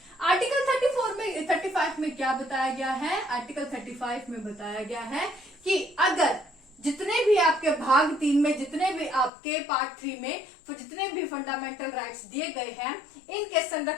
आर्टिकल 35 में क्या बताया गया है? आर्टिकल 35 में बताया गया है कि अगर जितने भी आपके भाग 3 में, जितने भी आपके पार्ट 3 में जितने भी फंडामेंटल राइट्स दिए गए हैं, इनके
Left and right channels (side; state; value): right; drops out; at 9.3 s